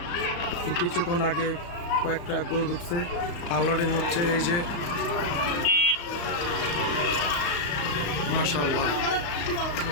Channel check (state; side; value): late; right; 35 ms